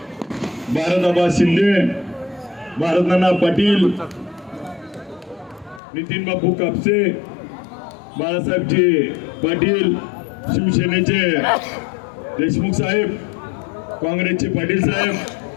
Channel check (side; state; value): right; drops out; at 5.8 s